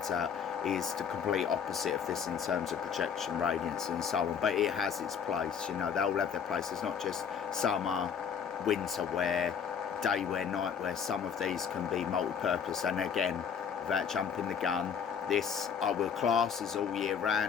out, is the complete opposite of this in terms of projection, radiance and so on. But it has its place, you know, they all have their place. It's not just summer, winter wear, day wear, night wear. Some of these can be multi-purpose. And again, without jumping the gun, this I will class as all year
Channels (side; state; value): right; quieter; 7.2 dB